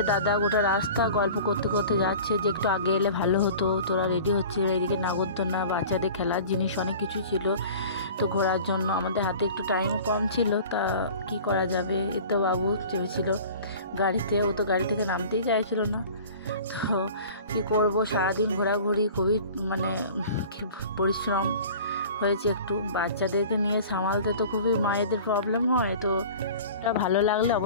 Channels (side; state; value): both; inverted; correlation -0.42